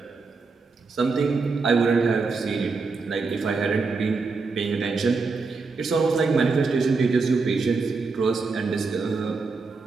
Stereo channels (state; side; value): quieter; left; 4.4 dB